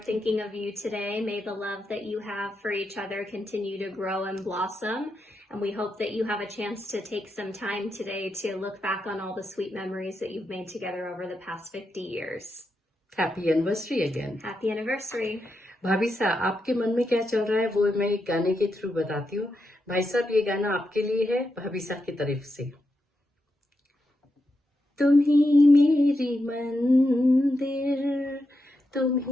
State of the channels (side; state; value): both; normal; correlation 0.85